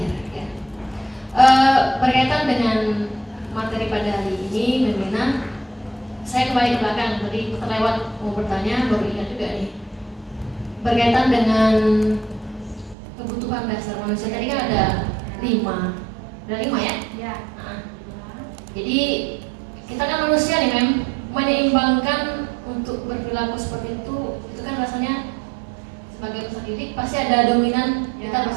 ya. Berkaitan dengan materi pada hari ini Membina, saya kembali ke belakang, tadi terlewat mau bertanya, baru ingat juga nih. Berkaitan dengan kebutuhan dasar manusia tadi kan ada 5 ya? Ya. Nah, jadi kita kan manusia nih menyeimbangkan untuk berperilaku seperti itu kan rasanya sebagai peserta didik pasti ada dominan kita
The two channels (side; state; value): left; drops out; at 13.0 s